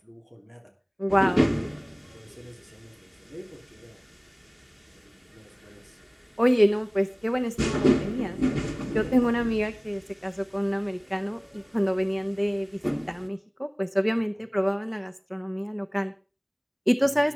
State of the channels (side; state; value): both; identical; correlation 1.00